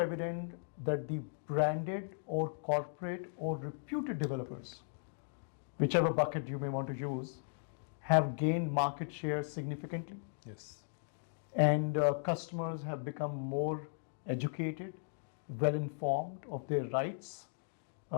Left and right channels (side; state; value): right; silent; digital silence